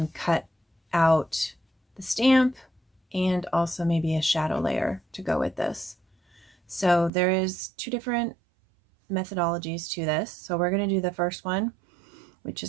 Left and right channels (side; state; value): left; drops out; at 7.1 s